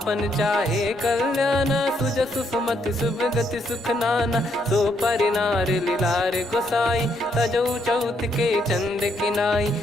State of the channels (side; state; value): both; normal; correlation 0.74